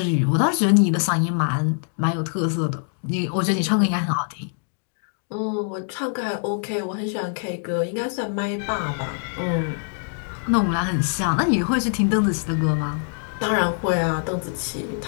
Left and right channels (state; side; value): silent; right; 63 dB below the other